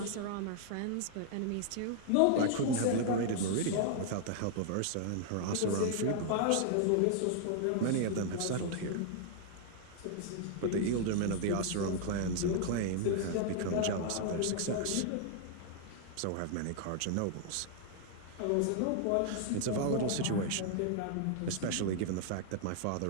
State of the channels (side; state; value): both; different; correlation -0.01